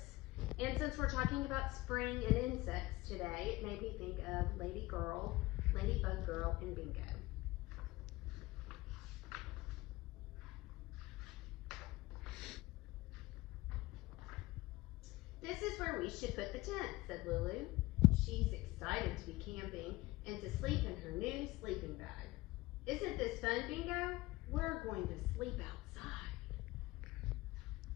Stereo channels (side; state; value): right; quieter; 19.3 dB